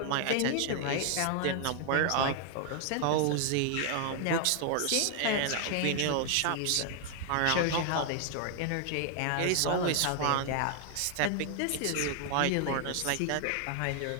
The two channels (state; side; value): different; both; correlation 0.00